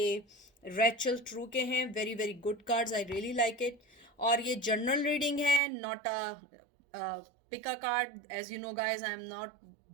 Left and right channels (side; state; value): left; drops out; at 5.6 s